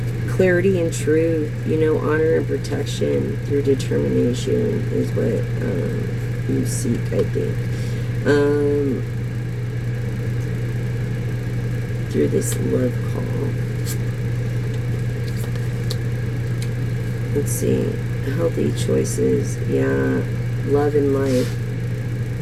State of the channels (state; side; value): identical; both; correlation 1.00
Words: clarity and truth, you know, honor and protection through determination is what you seek, I think. Through this love call. Let's see. Healthy choices. Yeah. Love in life.